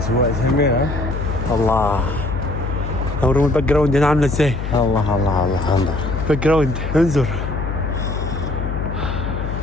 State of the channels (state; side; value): noise; left; hum, 4 dB below the sound